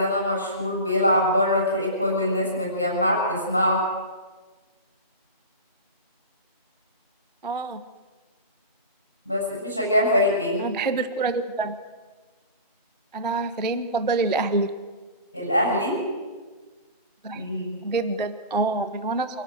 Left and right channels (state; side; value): inverted; both; correlation -0.31